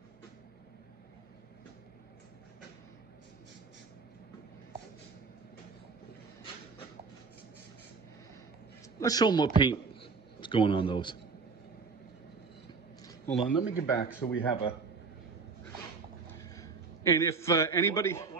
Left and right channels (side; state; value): left; quieter; 4.8 dB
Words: Let's show them what paint is going on those. Hold on, let me get back so we have a. And if anybody.